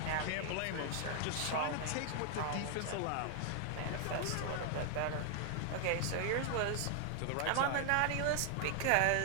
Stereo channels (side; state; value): both; different; correlation 0.00